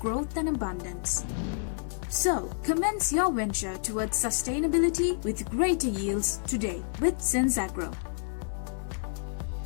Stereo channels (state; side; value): silent; right; digital silence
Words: and abundance. So, commence your venture towards sustainability with greater yields today with SenzAgro.